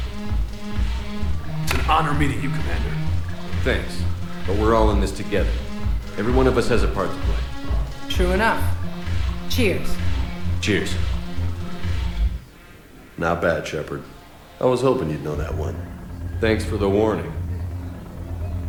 It's an honor meeting you, Commander. Thanks. But we're all in this together. Every one of us has a part to play. True enough. Cheers. Cheers. Not bad, Shepard. I was hoping you'd know that one. Thanks for the warning.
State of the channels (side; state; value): both; identical; correlation 1.00